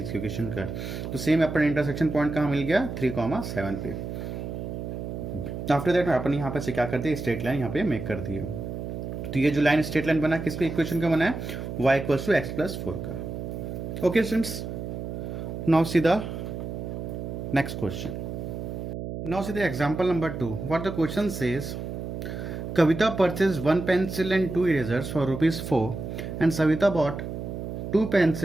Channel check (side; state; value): right; noise; hum, 6 dB below the sound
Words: इक्वेशन का है। तो सेम अपन इंटरसेक्शन पॉइंट कहाँ मिल गया 3,7 पे। आफ्टर दैट अपन यहाँ पे से क्या करते हैं, स्ट्रेट लाइन यहाँ पे मेक कर दिए। तो ये जो लाइन स्ट्रेट लाइन बना किसके इक्वेशन का बना है, y इक्वल्स टू x+4 का। Okay students, now see the next question. Now see the example number 2। What the question says, Kavita purchased 1 pencil and 2 erasers for ₹4 and Savita bought 2